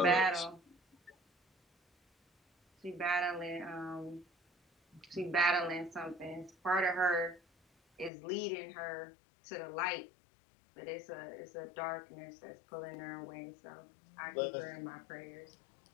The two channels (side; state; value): right; drops out; at 8.1 s